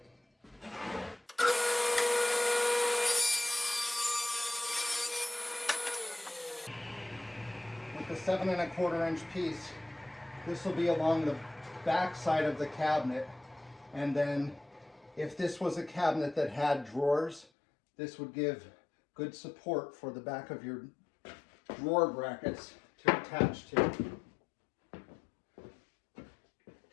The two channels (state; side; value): drops out; right; at 17.4 s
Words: With the 7.25 inch piece, this will be along the back side of the cabinet. And then if this was a cabinet that had drawers, this would give good support for the back of your drawer brackets to attach to.